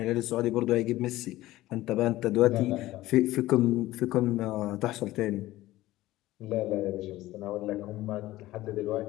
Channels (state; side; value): quieter; right; 16.6 dB